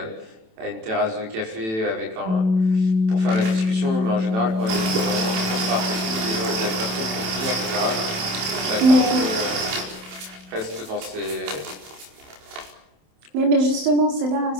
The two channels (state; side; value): late; left; 27 ms